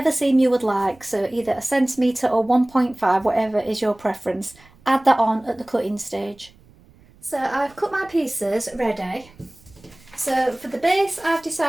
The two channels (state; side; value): noise; right; rumble, 27 dB below the sound